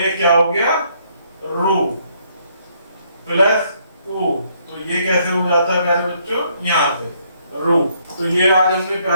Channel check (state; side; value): inverted; both; correlation -0.69